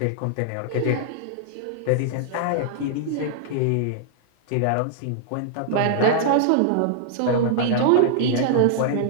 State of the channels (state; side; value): different; both; correlation -0.01